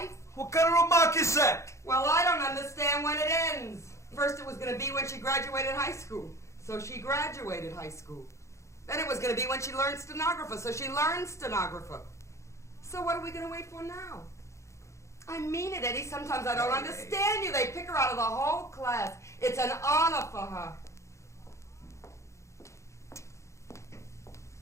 What kind of remark is that? Well, I don't understand when it ends. First it was gonna be when she graduated high school. So she graduated high school. Then it was gonna be when she learned stenographer. So she learned stenographer. So what are we gonna wait for now? I mean it, Eddie. Sometimes I don't understand you. They pick her out of the whole class. It's an honor for her.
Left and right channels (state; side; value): late; right; 0.14 ms